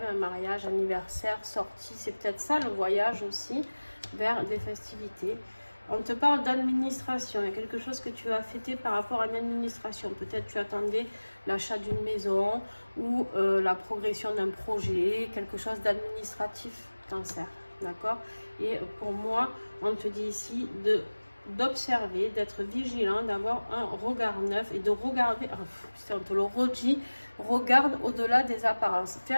un mariage, anniversaire, sortie. C'est peut-être ça le voyage aussi vers des festivités. On te parle d'administration. Il y a quelque chose que tu as fêté par rapport à une administration. Peut-être tu attendais l'achat d'une maison ou la progression d'un projet, quelque chose d'administratif, Cancer. D'accord? Et pour moi, on te dit ici d'observer, d'être vigilant, d'avoir un regard neuf et de regarder, on te le redit, regarde au-delà des apparences. Fais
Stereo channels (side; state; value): both; inverted; correlation -1.00